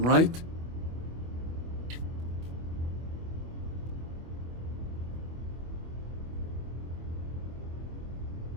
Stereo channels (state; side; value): late; left; 25 ms